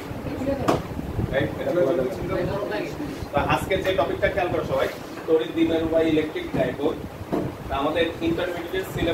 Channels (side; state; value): both; identical; correlation 1.00